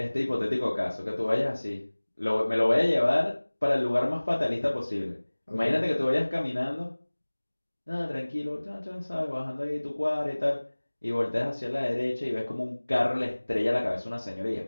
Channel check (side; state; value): both; inverted; correlation -1.00